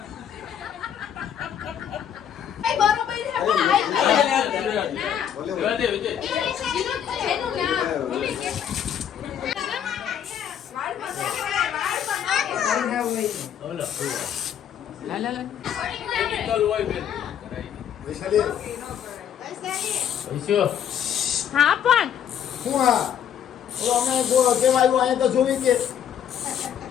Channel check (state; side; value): quieter; right; 9.2 dB